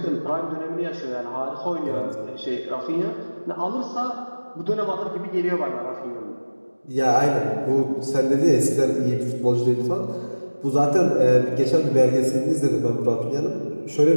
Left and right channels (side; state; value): both; inverted; correlation -1.00